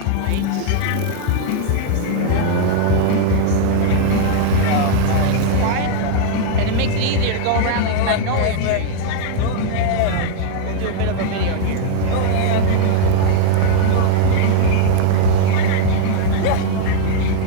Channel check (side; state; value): both; different; correlation 0.00